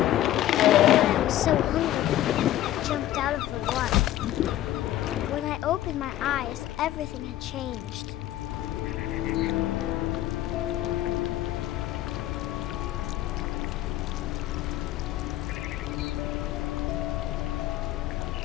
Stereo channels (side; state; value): right; quieter; 13.7 dB